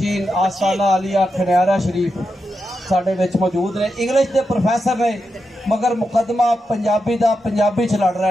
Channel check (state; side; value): normal; both; correlation 0.87